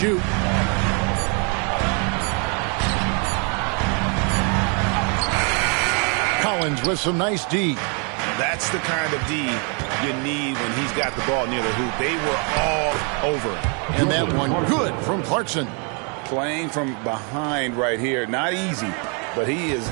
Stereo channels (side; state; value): left; quieter; 36.3 dB